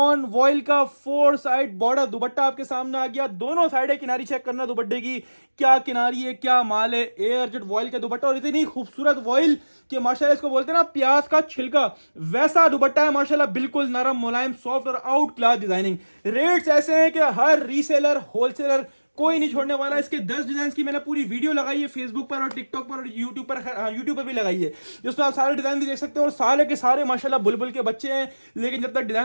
वॉइल का 4 साइड बॉर्डर दुपट्टा आपके सामने आ गया। दोनों साइड है किनारी चेक करना दुपट्टे की, क्या किनारी है क्या माल है। एयर जेट वॉइल का दुपट्टा, और इतनी खूबसूरत वॉइल कि माशाल्लाह इसको बोलते हैं ना प्याज का छिलका, वैसा दुपट्टा है माशाल्लाह, बिल्कुल नरम मुलायम सॉफ्ट और आउट क्लास डिजाइनिंग। रेट्स ऐसे हैं कि हर रीसेलर होलसेलर कोई नहीं छोड़ने वाला। इसके 10 डिजाइन की मैंने पूरी वीडियो लगाई है फेसबुक पर और टिकटॉक पर और यूट्यूब पर भी लगाई है, जिसमें आप सारे डिजाइन भी देख सकते हो। और सारे के सारे माशाल्लाह बुलबुल के बच्चे हैं। लेकिन जब तक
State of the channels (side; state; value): both; inverted; correlation -1.00